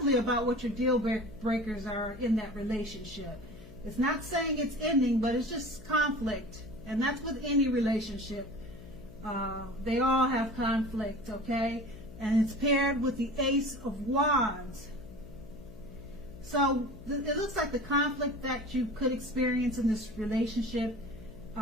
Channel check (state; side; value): noise; left; hum, 17 dB below the sound